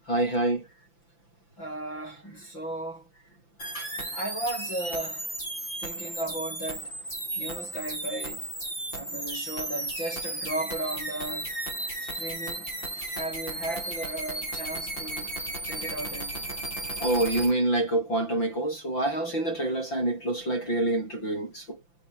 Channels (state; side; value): late; right; 5.9 ms